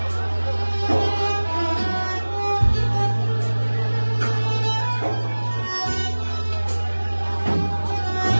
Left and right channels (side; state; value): both; inverted; correlation -1.00